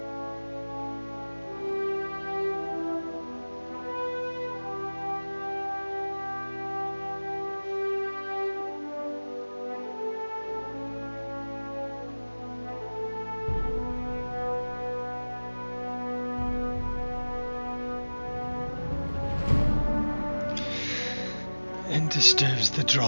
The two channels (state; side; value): inverted; both; correlation -1.00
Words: And disturbs the